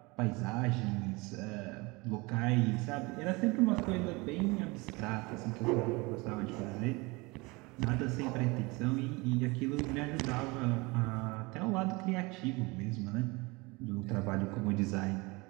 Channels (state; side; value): quieter; left; 25.2 dB